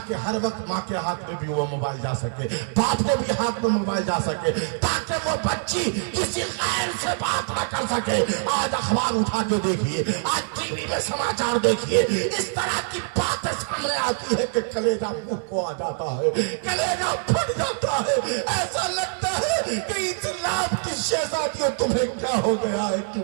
ہر وقت ماں کے ہاتھ میں بھی وہ موبائل جا سکے, باپ کے بھی ہاتھ میں موبائل جا سکے, تاکہ وہ بچی کسی غیر سے بات نہ کر سکے. آج اخبار اٹھا کے دیکھیے, آج ٹی وی میں سماچار دیکھیے, اس طرح کی باتیں سامنے آتی ہے کہ کلیجہ منہ کو آ جاتا ہے, کلیجہ پھٹ جاتا ہے. ایسا لگتا ہے کہ اسلام کی شہزادیوں تمہیں کیا ہو گیا ہے, کیوں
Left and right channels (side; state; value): left; silent; 62 dB below the other